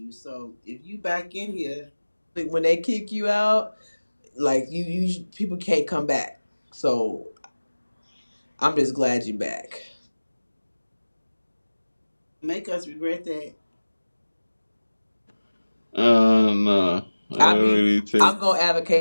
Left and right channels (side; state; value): both; inverted; correlation -1.00